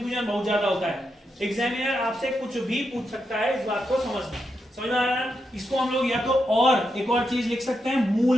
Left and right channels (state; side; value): normal; both; correlation 0.84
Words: बहुत ज्यादा होता है। एग्जामिनर आपसे कुछ भी पूछ सकता है, इस बात को समझना। समझ में आ रहा है? इसको हम लोग या तो और एक और चीज लिख सकते हैं,